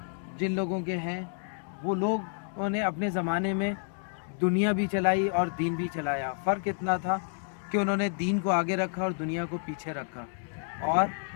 جن لوگوں کے ہیں وہ لوگوں نے اپنے زمانے میں دنیا بھی چلائی اور دین بھی چلایا. فرق اتنا تھا کہ انہوں نے دین کو آگے رکھا اور دنیا کو پیچھے رکھا, اور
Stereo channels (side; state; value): right; silent; 58 dB below the other